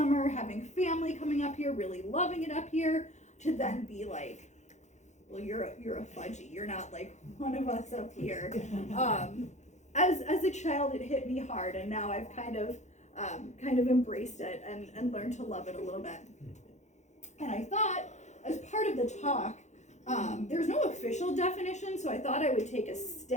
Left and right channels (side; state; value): right; late; 0.34 ms